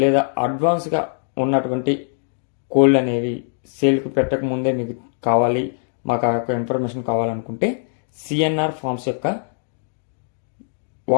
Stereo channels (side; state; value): right; silent; digital silence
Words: లేదా అడ్వాన్స్గా ఉన్నటువంటి కోళ్ళు అనేవి సేల్కి పెట్టక ముందే మీకు కావాలి, మాకు ఆ యొక్క ఇన్ఫర్మేషన్ కావాలనుకుంటే సిఎన్ఆర్ ఫార్మ్స్ యొక్క